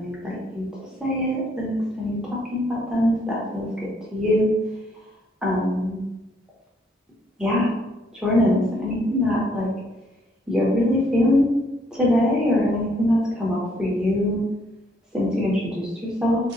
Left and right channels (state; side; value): normal; both; correlation 0.68